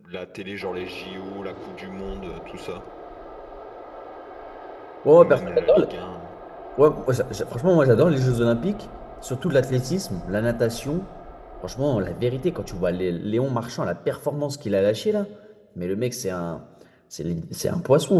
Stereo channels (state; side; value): identical; both; correlation 1.00